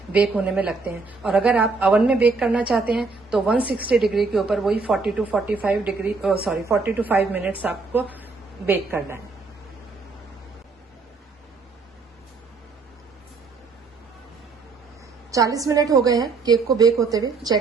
बेक होने में लगते हैं। और अगर आप अवन में बेक करना चाहते हैं तो 160 डिग्री के ऊपर वही 40 to 5 मिनट्स आपको बेक करना है। चालीस मिनट हो गए हैं केक को बेक होते हुए,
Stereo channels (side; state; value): left; quieter; 4.2 dB